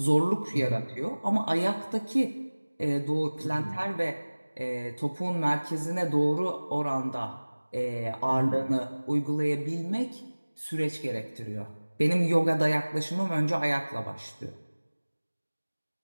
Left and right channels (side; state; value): both; inverted; correlation -1.00